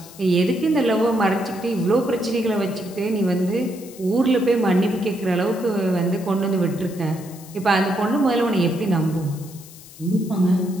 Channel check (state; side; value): noise; left; hiss, 19 dB below the sound